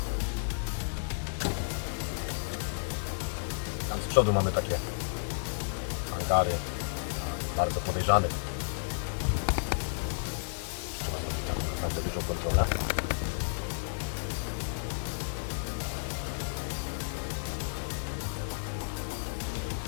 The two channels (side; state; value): right; silent; digital silence